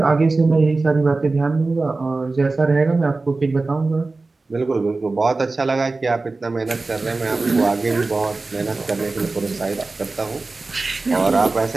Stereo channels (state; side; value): quieter; left; 3.5 dB